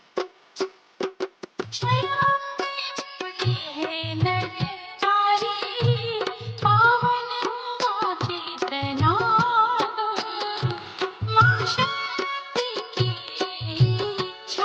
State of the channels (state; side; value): identical; both; correlation 1.00